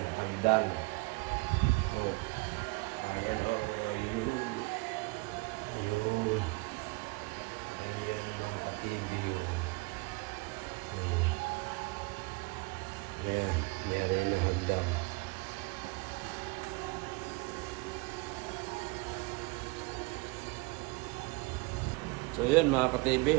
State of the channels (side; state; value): left; quieter; 25.8 dB